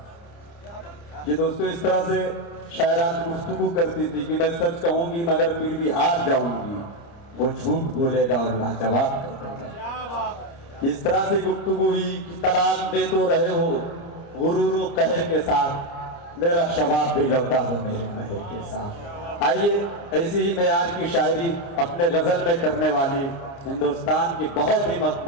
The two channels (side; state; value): right; late; 29 ms